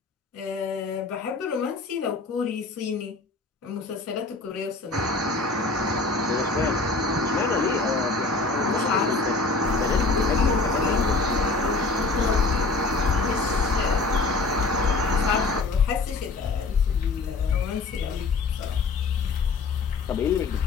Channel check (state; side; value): quieter; right; 3.6 dB